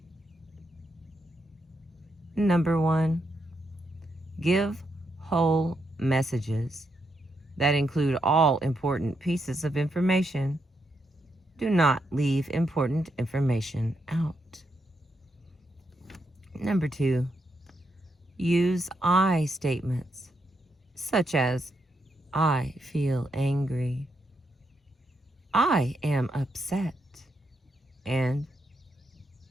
Number 1, give whole messages that include all important pieces of information. Do not leave important information out. Number 2, use I statements, such as, I feel angry, I am upset, and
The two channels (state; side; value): normal; both; correlation 0.81